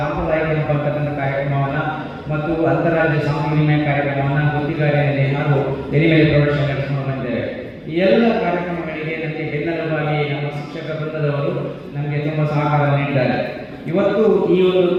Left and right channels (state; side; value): identical; both; correlation 1.00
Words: ಸಂಪರ್ಕದ ಕಾರ್ಯಕ್ರಮವನ್ನು ಮತ್ತು ಅಂತಾರಾಜ್ಯ ಸಾಂಸ್ಕೃತಿಕ ವಿನಿಮಯ ಕಾರ್ಯಕ್ರಮವನ್ನು ಗುತ್ತಿಗಾರಿಯಲ್ಲಿ ಹಾಗೂ ಎಲಿಮೇಲೆ ಪ್ರೌಢಶಾಲೆ ನಡೆಸಿಕೊಂಡು ಬಂದಿದ್ದೇವೆ. ಈ ಎಲ್ಲ ಕಾರ್ಯಕ್ರಮಗಳಿಗೆ ನನಗೆ ಬೆನ್ನೆಲುಬಾಗಿ ನಮ್ಮ ಶಿಕ್ಷಕ ವೃಂದದವರು ನಮಗೆ ತುಂಬ ಸಹಕಾರ ನೀಡಿದ್ದಾರೆ. ಇವತ್ತು ಈ ಒಂದು